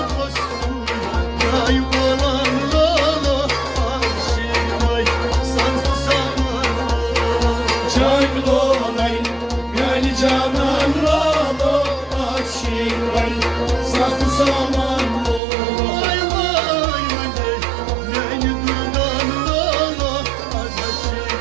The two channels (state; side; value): drops out; left; at 15.4 s